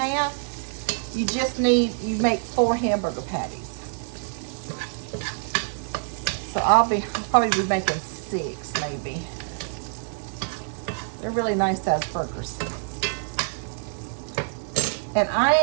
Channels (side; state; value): left; silent; digital silence